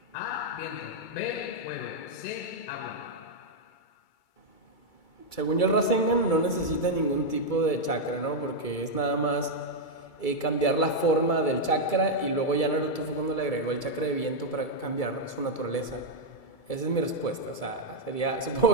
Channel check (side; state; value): right; late; 2.3 ms